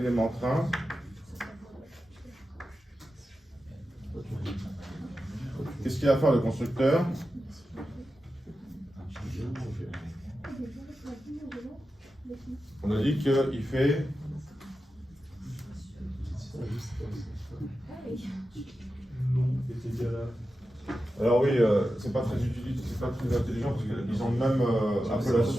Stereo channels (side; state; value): both; normal; correlation 0.91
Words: train. Qu'est-ce qu'il va faire le constructeur? On a dit qu'il fait... Alors oui, c'est pas très utile, c'est pas très intelligent parce qu'ils ont même